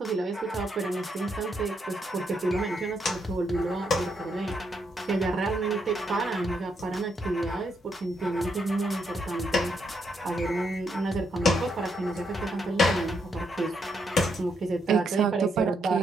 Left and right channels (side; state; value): both; normal; correlation 0.77